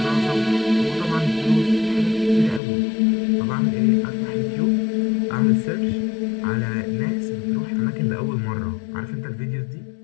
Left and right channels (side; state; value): right; drops out; at 2.6 s